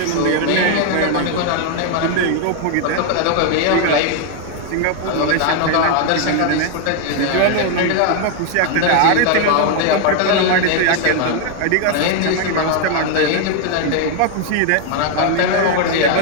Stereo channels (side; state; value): both; different; correlation 0.00